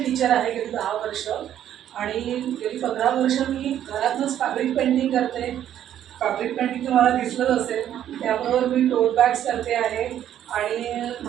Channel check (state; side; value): quieter; left; 10.9 dB